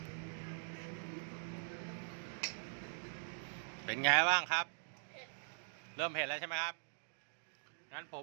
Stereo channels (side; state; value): left; silent; digital silence